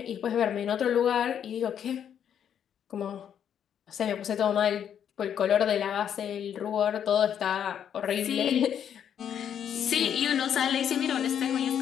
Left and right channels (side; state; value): right; quieter; 8.9 dB